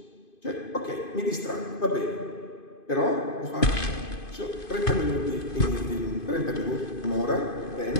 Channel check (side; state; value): right; late; 2.5 ms